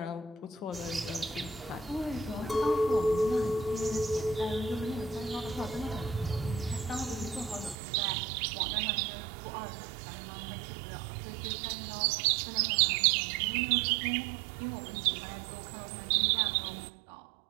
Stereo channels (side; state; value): left; drops out; at 7.8 s